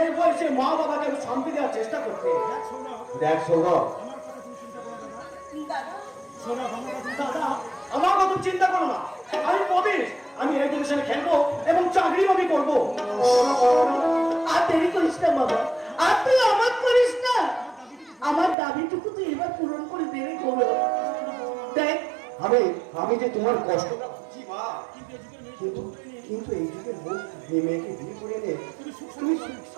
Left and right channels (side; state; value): left; drops out; at 18.6 s